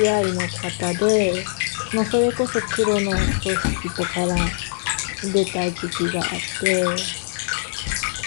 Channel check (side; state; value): right; silent; digital silence